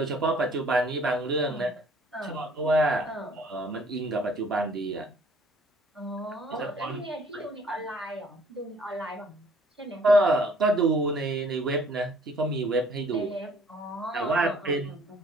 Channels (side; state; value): both; normal; correlation 0.57